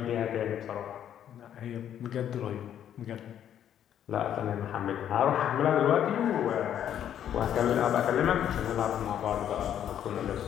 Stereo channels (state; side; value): quieter; right; 10.1 dB